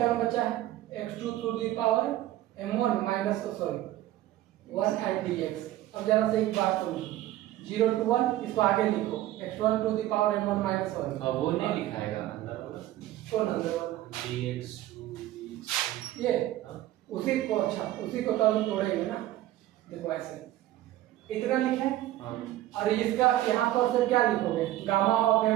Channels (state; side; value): quieter; left; 14.6 dB